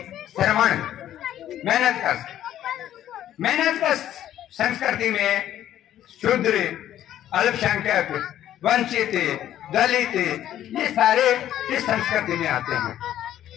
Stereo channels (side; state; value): right; quieter; 11.9 dB